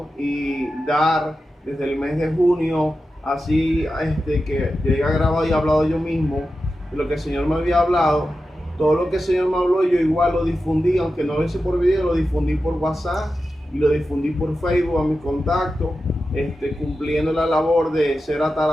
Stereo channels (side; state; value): both; normal; correlation 0.92